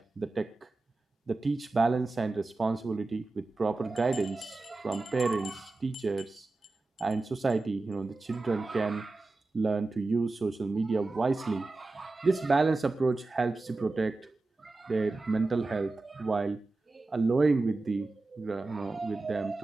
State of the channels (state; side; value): quieter; left; 3.3 dB